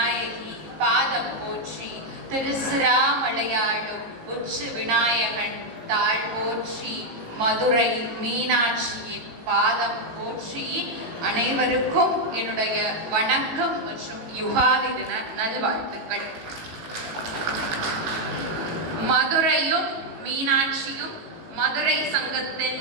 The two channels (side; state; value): left; late; 18 ms